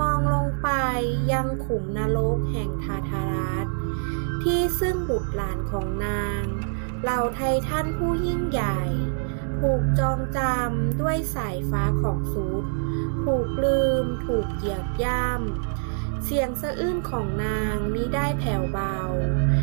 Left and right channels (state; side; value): silent; left; digital silence